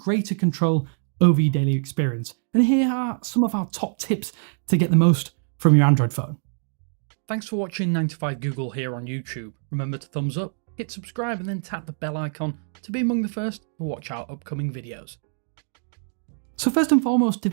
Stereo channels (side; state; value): left; silent; digital silence